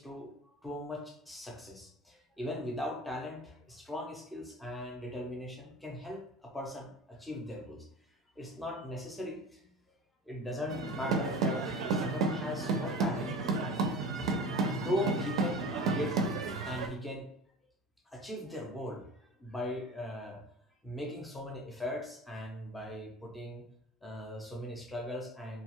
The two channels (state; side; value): normal; both; correlation 0.36